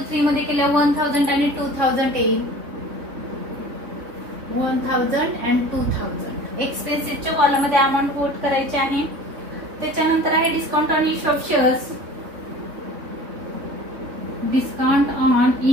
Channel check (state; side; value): late; left; 3.6 ms